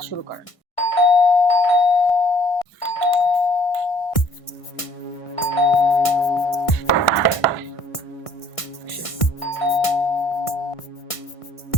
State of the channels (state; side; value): late; right; 1.6 ms